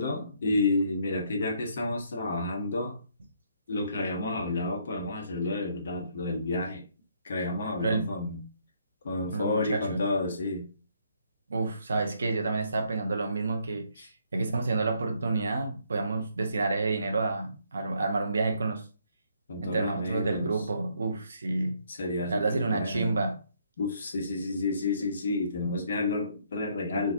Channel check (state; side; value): inverted; both; correlation -0.69